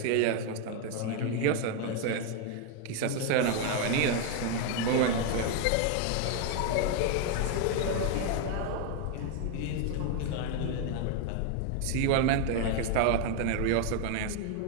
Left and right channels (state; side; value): different; both; correlation 0.01